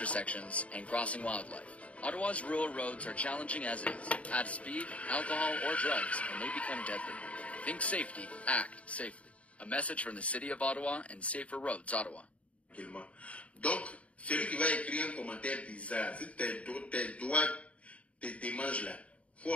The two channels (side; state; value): right; late; 0.065 ms